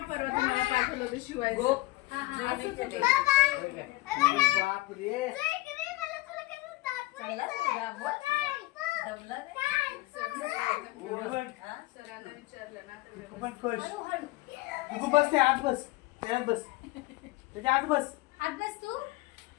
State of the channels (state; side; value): quieter; right; 19.4 dB